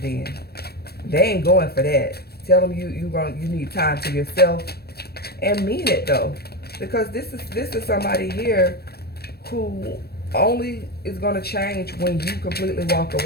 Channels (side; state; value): right; late; 0.46 ms